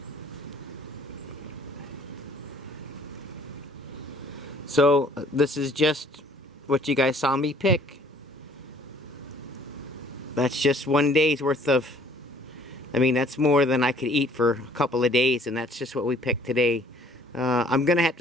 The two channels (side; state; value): both; normal; correlation 0.56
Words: So this is just what you guys saw me pick. That's just one day's worth of, I mean, that's more than I could eat for a couple of days, and that's just what we picked today. I'm going to have